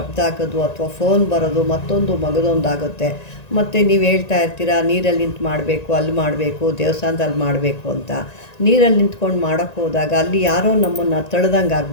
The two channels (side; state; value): right; late; 1.9 ms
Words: ಆಗೋದು, ಅಥವಾ ಫೋನ್ ಬರೋದು, ಮತ್ತೊಂದು ಮಗದೊಂದು ಆಗುತ್ತೆ. ಮತ್ತು ನೀವು ಹೇಳ್ತಾ ಇರ್ತೀರಾ ನೀರಲ್ಲಿ ನಿಂತು ಮಾಡಬೇಕು, ಅಲ್ಲಿ ಮಾಡಬೇಕು, ದೇವಸ್ಥಾನದಲ್ಲಿ ಮಾಡಬೇಕು ಅಂತ. ನೀರಲ್ಲಿ ನಿಂತ್ಕೊಂಡು ಮಾಡೋಕ್ಕೆ ಹೋದಾಗ ಅಲ್ಲಿ ಯಾರೋ ನಮ್ಮನ್ನು ತಳ್ದಂಗೆ